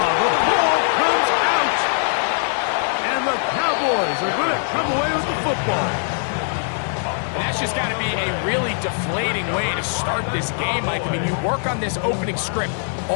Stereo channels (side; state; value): right; silent; digital silence